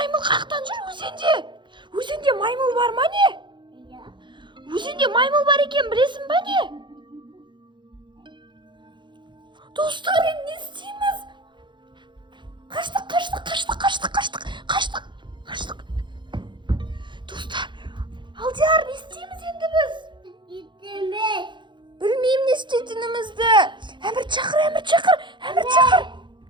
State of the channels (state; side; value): late; left; 0.23 ms